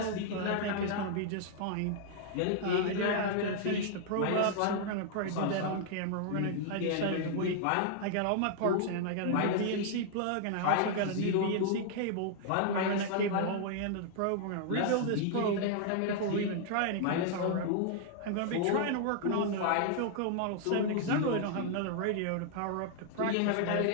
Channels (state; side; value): different; both; correlation -0.01